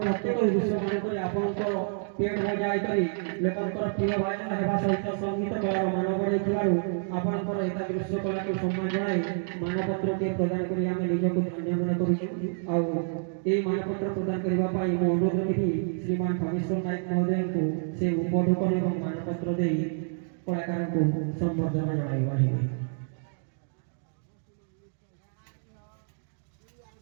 ପ୍ରତ୍ୟେକ ଦୃଶ୍ୟମାନଙ୍କରେ ଆପଣଙ୍କର ପେଟ ବଜାଇ କରି ଲୋକଙ୍କର ପ୍ରିୟ ଭାଜନ ହେବା ସହିତ ସଙ୍ଗୀତ କଳାର ମାନ ବଢ଼ାଇଥିବାରୁ ଆପଣଙ୍କର ଏହି ଦୃଶ୍ୟ କଳାକୁ ସମ୍ମାନ ଜଣାଇ ମାନପତ୍ରଟିଏ ପ୍ରଦାନ କରି ଆମେ ନିଜକୁ ଧନ୍ୟ ମନେ କରୁଛୁ। ଆଉ ଏହି ମାନପତ୍ର ପ୍ରଦାନ କରିବା ପାଇଁ ମୁଁ ଅନୁରୋଧ କରିବି ଶ୍ରୀମାନ ଖଗେଶ୍ୱର ନାୟକ ମହୋଦୟଙ୍କୁ ସେ ଉପଢୌକନ ଏବଂ ମାନପତ୍ର ଦେଇ କଳାକାରଙ୍କୁ ସମ୍ବର୍ଦ୍ଧନା ଜଣାଇପାରିବେ।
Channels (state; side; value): silent; left; digital silence